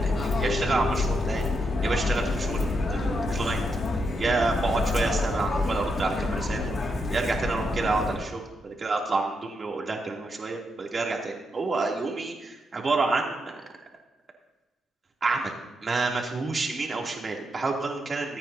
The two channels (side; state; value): both; normal; correlation 0.82